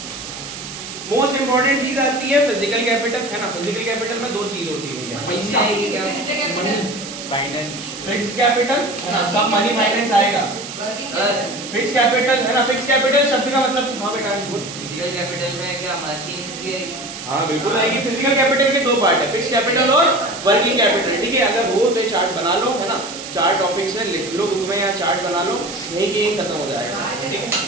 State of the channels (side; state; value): right; noise; hiss, 11 dB below the sound